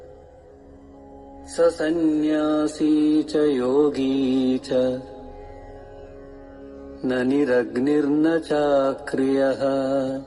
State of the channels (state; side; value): identical; both; correlation 1.00